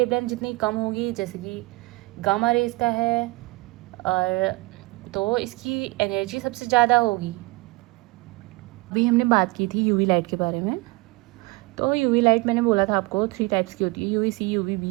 जितनी कम होगी, जैसे कि गामा रेज का है, और तो इसकी एनर्जी सबसे ज़्यादा होगी। अभी हमने बात की थी यूवी लाइट के बारे में। तो यूवी लाइट मैंने बोला था आपको 3 टाइप्स की होती है, UV C, UV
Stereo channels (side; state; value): left; quieter; 23.5 dB